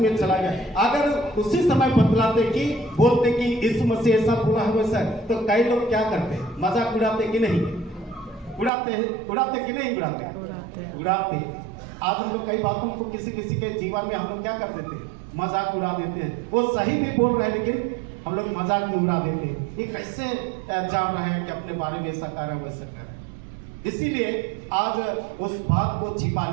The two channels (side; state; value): left; drops out; at 8.7 s